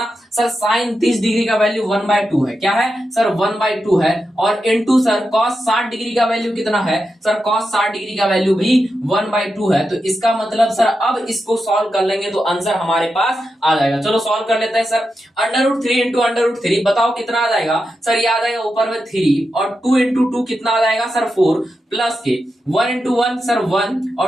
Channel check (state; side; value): normal; both; correlation 0.88